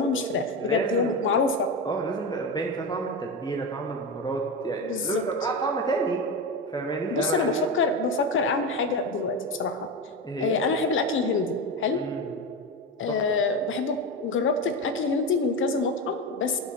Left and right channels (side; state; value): both; normal; correlation 0.18